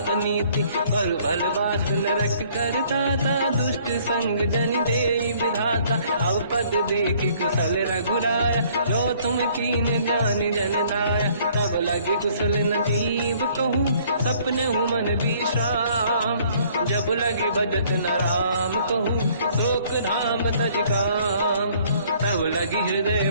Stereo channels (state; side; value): inverted; both; correlation -0.59